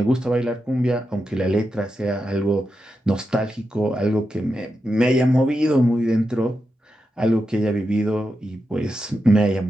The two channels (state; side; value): normal; both; correlation 0.88